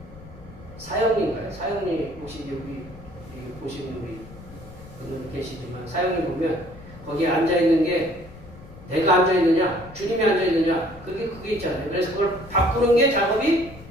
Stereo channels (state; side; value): noise; left; rumble, 18 dB below the sound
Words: 사형님인가요? 사형님 혹시 여기 보시는 우리 분들 계시지만 사형님 보면 거기에 앉아있는 게 내가 앉아있느냐 주님이 앉아있느냐 그게 있잖아요. 그래서 그걸 바꾸는 게 작업이